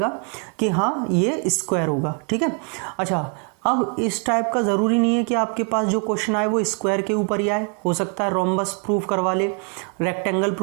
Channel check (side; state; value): left; quieter; 37.1 dB